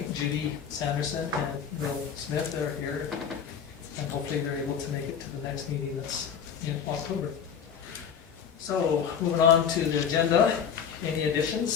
Judy Sanderson and Bill Smith, they're here. And hopefully they're able to make it to the next meeting that's in October. So, moving on to the agenda, any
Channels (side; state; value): right; quieter; 7.4 dB